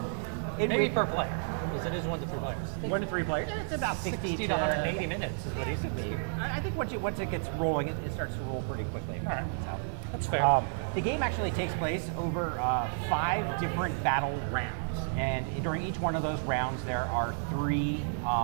Maybe per player, because it is 1 to 3 players. 1 to 3 players. It's about 60 to 180 minutes is what he said to me. I think once it gets rolling, it starts to roll pretty quickly. All right, so, that's fair. The game actually takes place over 5 different battle rounds, and during each one of those rounds, there are 3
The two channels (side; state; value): left; silent; digital silence